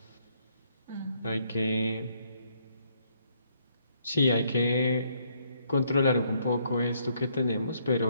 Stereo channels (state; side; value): inverted; both; correlation -0.70